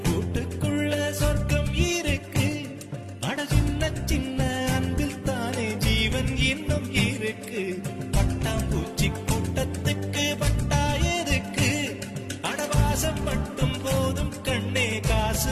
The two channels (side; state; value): both; identical; correlation 1.00